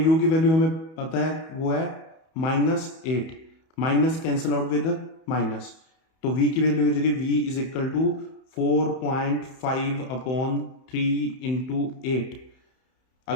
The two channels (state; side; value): late; right; 31 ms